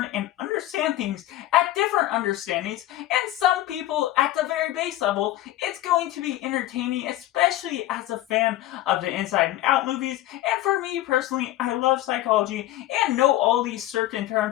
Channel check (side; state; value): right; quieter; 14.7 dB